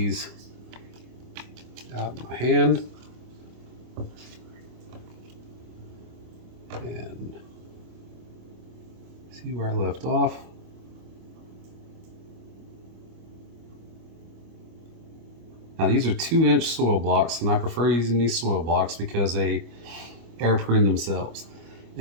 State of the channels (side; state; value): left; late; 25 ms